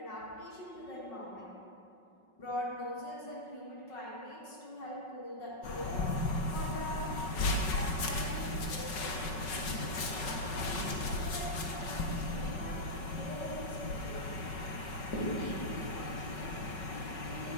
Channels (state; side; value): late; right; 5.4 ms